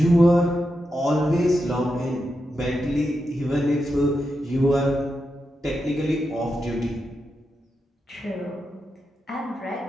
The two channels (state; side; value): normal; both; correlation 0.87